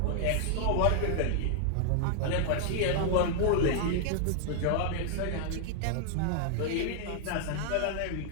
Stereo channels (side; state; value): both; different; correlation -0.01